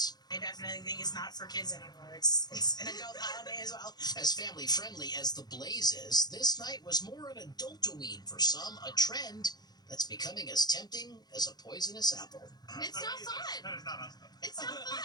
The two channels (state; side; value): late; right; 0.20 ms